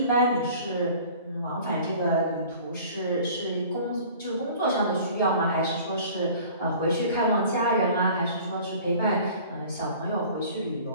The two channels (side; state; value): both; inverted; correlation -0.47